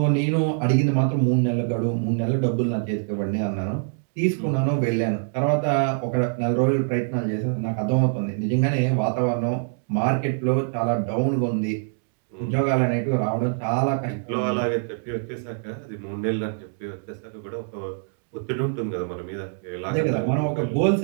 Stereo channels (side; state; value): left; silent; digital silence